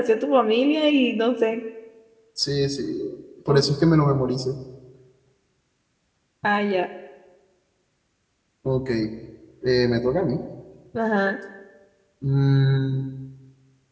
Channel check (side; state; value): both; identical; correlation 1.00